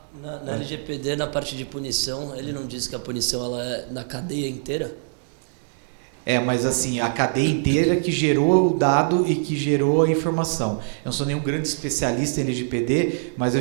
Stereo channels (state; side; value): silent; left; digital silence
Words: Na LGPD, na parte de punição, ele não diz que a punição ela é na cadeia inteira? Mas assim, a cadeia inteira que gerou o dado e que gerou a informação. Eu não sou nenhum grande especialista em LGPD, mas eu